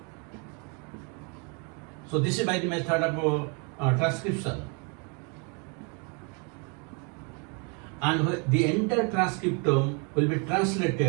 So this is by the method of transcription. And the entire transcriptome will be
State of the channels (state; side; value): quieter; left; 35.1 dB